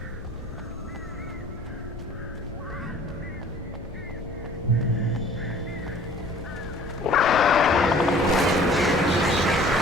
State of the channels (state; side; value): noise; left; rumble, 14 dB below the sound